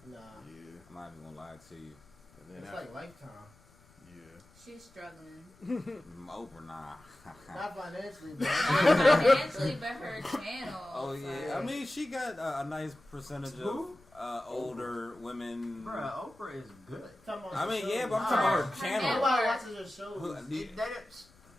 Nah. Yeah. I'm not even gonna lie to you. And then It's like Lifetime. Yeah. She's struggling. Oprah, nah. Not financially, but Not financially, but her channel. Oh yeah, I mean she got a nice percentage of older women. Bruh, Oprah is good. I mean, yeah, but I'm talking about her channel. Nobody watches her shows.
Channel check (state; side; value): noise; left; rumble, 28 dB below the sound